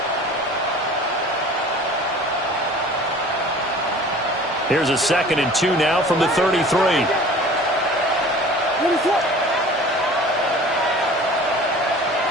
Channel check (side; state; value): both; normal; correlation 0.44